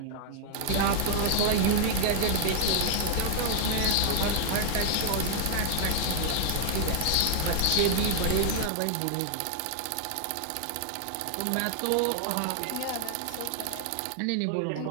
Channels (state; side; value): different; both; correlation 0.00